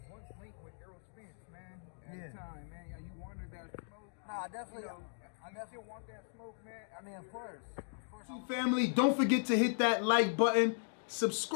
once linked with Errol Spence, man. At the time, man. Yeah, you wanted that smoke. Nah, I definitely still want that smoke, man. Of course. Family, don't forget to hit that like button.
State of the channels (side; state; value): right; silent; digital silence